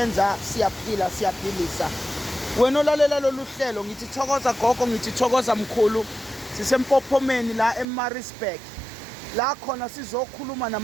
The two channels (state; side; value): drops out; left; at 7.9 s